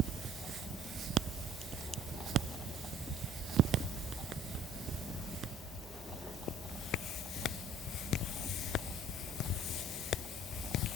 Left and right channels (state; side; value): normal; both; correlation 0.54